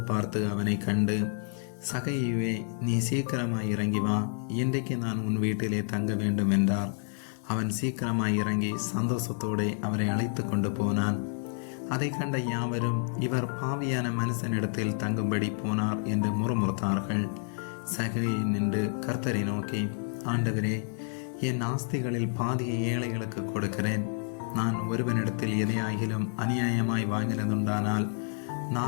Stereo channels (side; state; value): right; silent; digital silence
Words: பார்த்து அவனை கண்டு, சகையுவே, நீ சீக்கிரமாய் இறங்கி வா, இன்றைக்கு நான் உன் வீட்டிலே தங்க வேண்டும் என்றார். அவன் சீக்கிரமாய் இறங்கி சந்தோஷத்தோடு அவரை அழைத்து கொண்டு போனான். அதை கண்ட யாவரும், இவர் பாவியான மனுஷனிடத்தில் தங்கும்படி போனார் என்று முறுமுறுத்தார்கள். சகையை நின்று கர்த்தரை நோக்கி, ஆண்டவரே, என் ஆஸ்திகளில் பாதியை ஏழைகளுக்கு கொடுக்கிறேன். நான் ஒருவனிடத்தில் எதையாகிலும் அநியாயமாய் வாங்கினதுண்டானால்